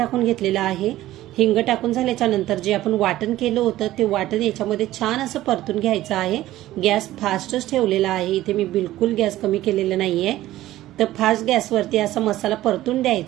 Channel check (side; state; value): left; quieter; 15.1 dB